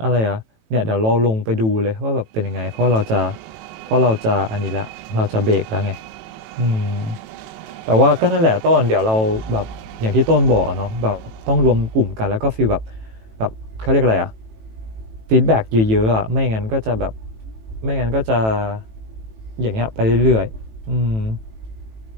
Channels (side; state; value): left; late; 18 ms